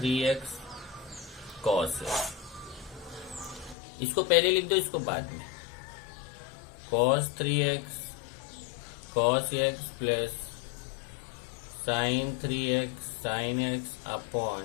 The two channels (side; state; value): right; drops out; at 3.8 s